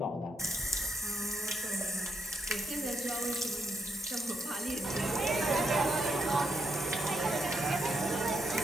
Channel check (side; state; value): both; normal; correlation 0.78